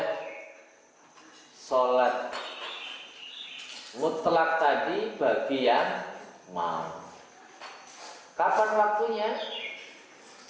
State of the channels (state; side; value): identical; both; correlation 1.00